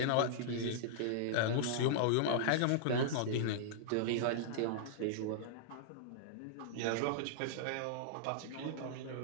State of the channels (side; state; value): both; different; correlation -0.02